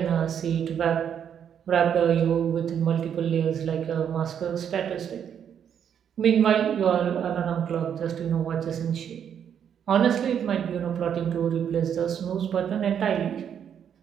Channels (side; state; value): left; quieter; 8.5 dB